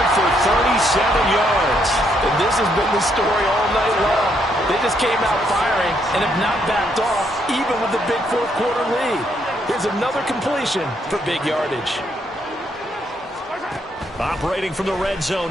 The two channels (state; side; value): normal; both; correlation 0.74